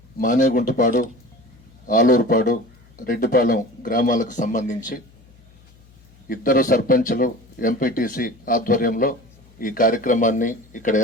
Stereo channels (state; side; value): noise; left; hum, 27 dB below the sound